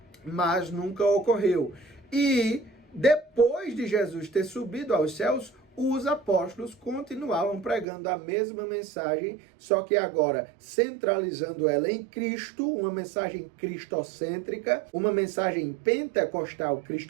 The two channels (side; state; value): left; drops out; at 7.9 s